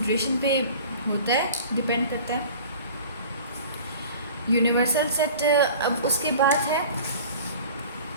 पे होता है, डिपेंड करता है। यूनिवर्सल सेट अब उसके बाद है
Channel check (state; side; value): inverted; both; correlation -0.42